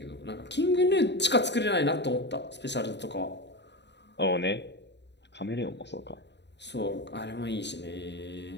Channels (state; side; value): late; right; 0.51 ms